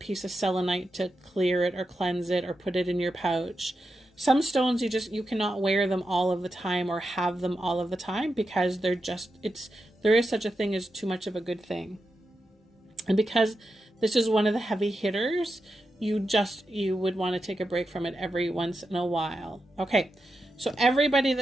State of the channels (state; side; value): normal; both; correlation 0.88